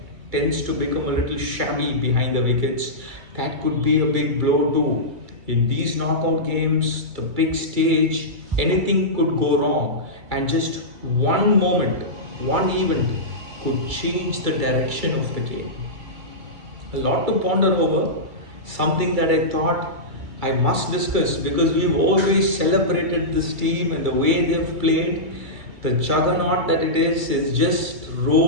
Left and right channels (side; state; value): left; late; 2.3 ms